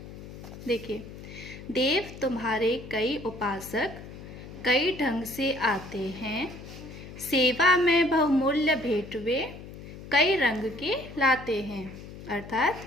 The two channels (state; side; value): noise; left; hum, 14 dB below the sound